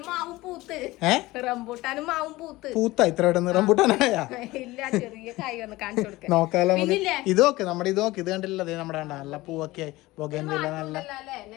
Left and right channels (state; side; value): quieter; right; 19.3 dB